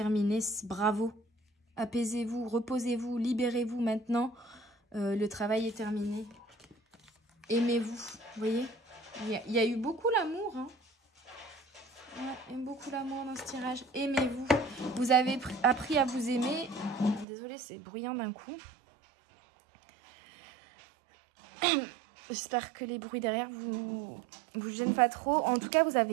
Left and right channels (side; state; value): left; drops out; at 17.2 s